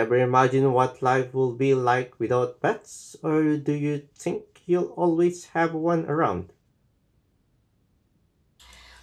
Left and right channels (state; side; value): identical; both; correlation 1.00